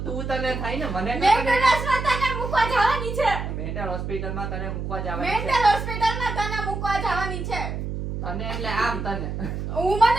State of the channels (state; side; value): noise; right; hum, 5 dB below the sound